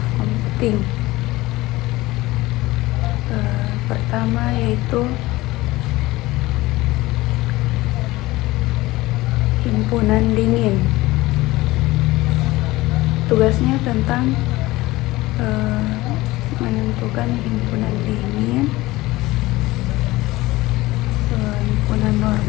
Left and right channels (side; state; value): right; quieter; 19.1 dB